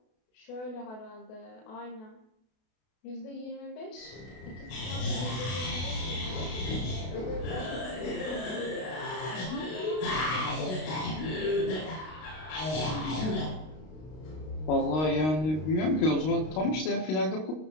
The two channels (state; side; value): late; right; 32 ms